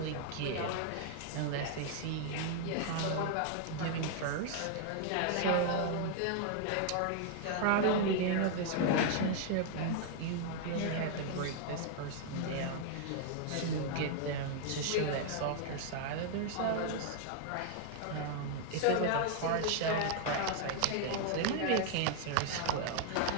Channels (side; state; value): both; different; correlation 0.00